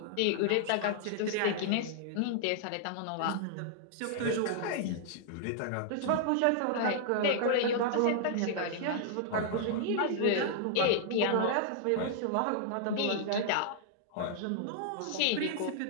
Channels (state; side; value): different; both; correlation -0.01